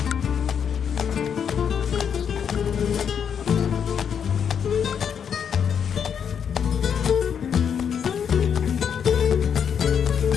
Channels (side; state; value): right; quieter; 7.6 dB